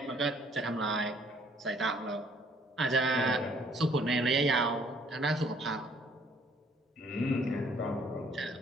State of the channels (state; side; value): normal; both; correlation 0.61